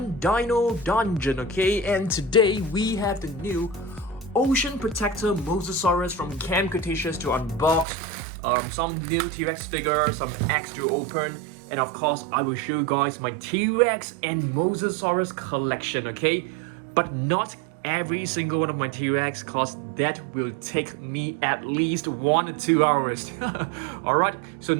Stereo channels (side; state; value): left; drops out; at 7.9 s